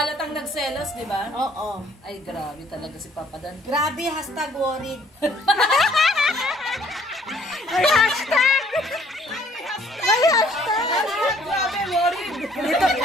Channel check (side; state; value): both; normal; correlation 0.60